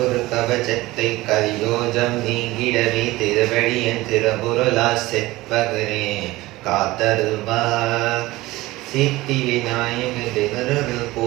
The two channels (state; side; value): quieter; left; 19.0 dB